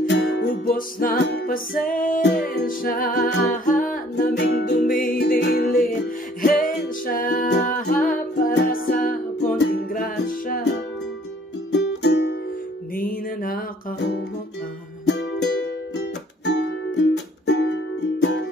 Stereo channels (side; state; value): both; normal; correlation 0.59